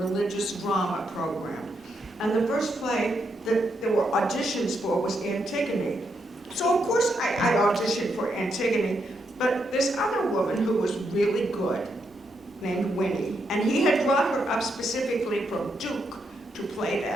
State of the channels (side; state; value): both; normal; correlation 0.80